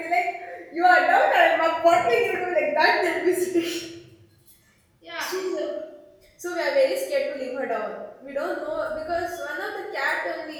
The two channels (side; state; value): both; identical; correlation 1.00